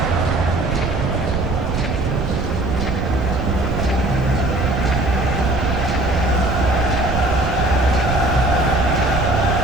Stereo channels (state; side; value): noise; right; rumble, 2 dB below the sound